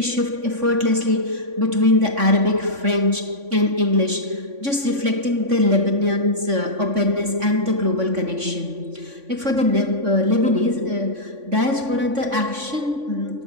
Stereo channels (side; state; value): left; late; 3.5 ms